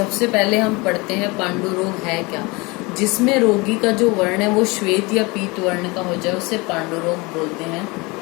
पहले हम पढ़ते हैं पांडु रोग है क्या। जिसमें रोगी का जो वर्ण है वो श्वेत या पीत वर्ण का हो जाए उसे पांडु रोग बोलते हैं।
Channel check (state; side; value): quieter; right; 25.6 dB